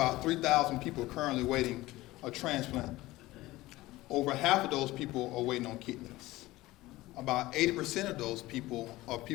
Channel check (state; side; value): quieter; right; 18.3 dB